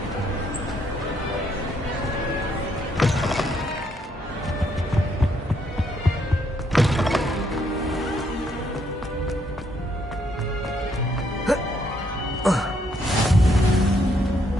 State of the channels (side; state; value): both; normal; correlation 0.72